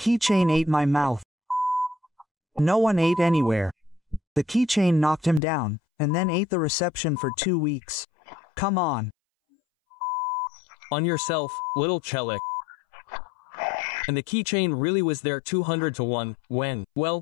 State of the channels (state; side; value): drops out; right; at 5.4 s